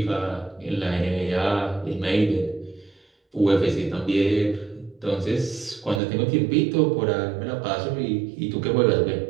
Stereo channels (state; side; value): drops out; left; at 6.0 s